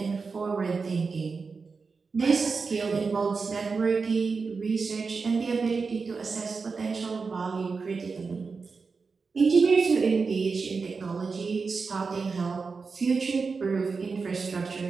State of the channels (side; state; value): left; quieter; 4.7 dB